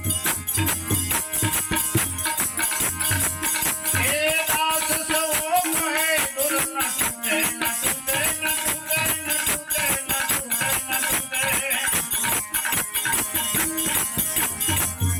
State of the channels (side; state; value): both; identical; correlation 1.00